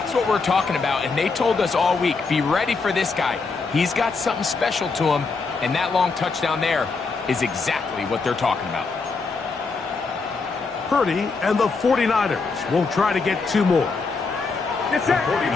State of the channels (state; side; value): quieter; right; 4.3 dB